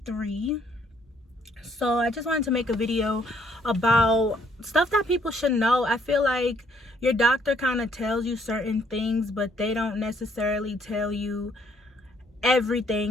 So I just wanted to make a video about stuff that people should know. I feel like your doctor kind of tells you certain things, but they don't necessarily tell you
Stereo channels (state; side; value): normal; both; correlation 0.67